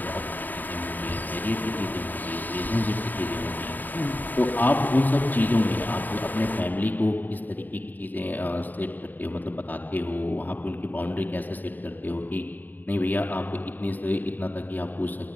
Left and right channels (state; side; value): late; right; 0.087 ms